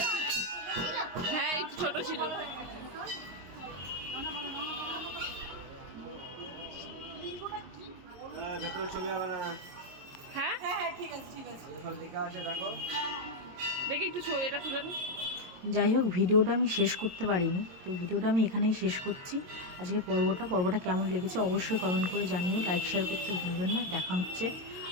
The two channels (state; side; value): late; left; 22 ms